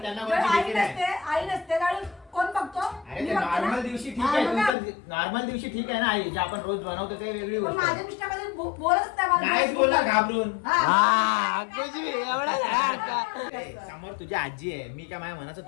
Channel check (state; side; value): drops out; right; at 4.8 s